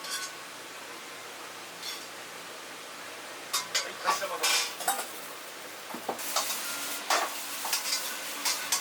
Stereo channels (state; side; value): identical; both; correlation 1.00